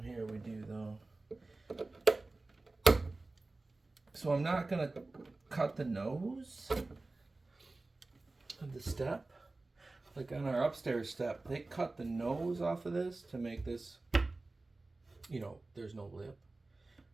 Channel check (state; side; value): quieter; left; 3.2 dB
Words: here we do though. So I'm not going to cut the nose of the step. Like on our upstairs step, they cut the nose off of this to make this, you know, there's no lip.